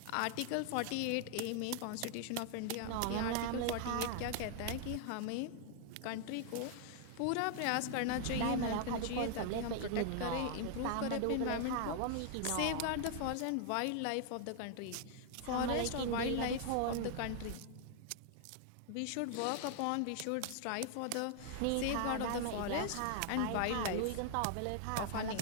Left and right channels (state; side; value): different; both; correlation 0.00